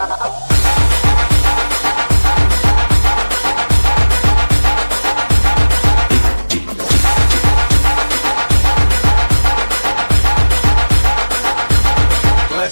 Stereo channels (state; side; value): inverted; both; correlation -1.00